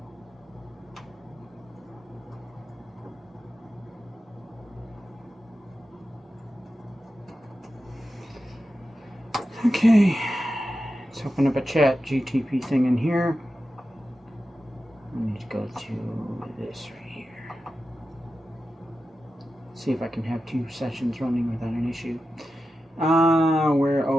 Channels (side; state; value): both; normal; correlation 0.92